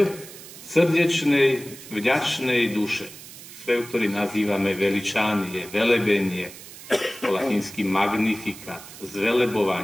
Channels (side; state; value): right; noise; hiss, 16 dB below the sound